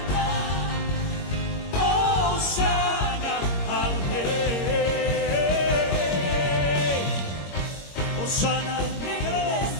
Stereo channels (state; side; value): late; right; 21 ms